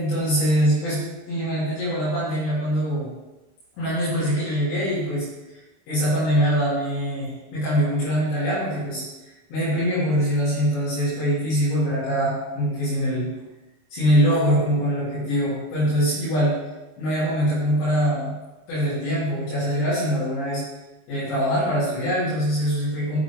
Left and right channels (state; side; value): late; right; 26 ms